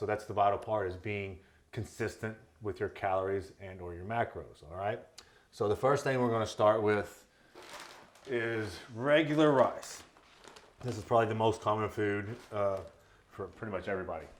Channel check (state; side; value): identical; both; correlation 1.00